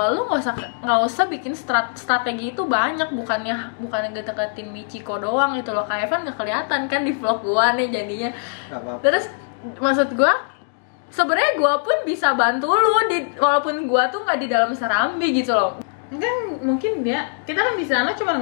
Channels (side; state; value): right; silent; digital silence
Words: lu nggak usah bikin strategi itu banyak, bukannya deketin Michiko doang itu loh. Kayak Evan nggak kelihatan kan di vlog gue nih jadinya. Terus maksud gue sebenarnya gue pun bisa bantu lu walaupun gue tuh nggak di dalam Serambi gitu loh. Kan mungkin kita kan di sana cuma